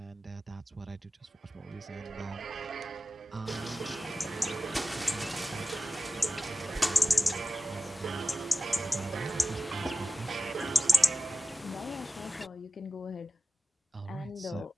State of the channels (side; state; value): both; normal; correlation 0.95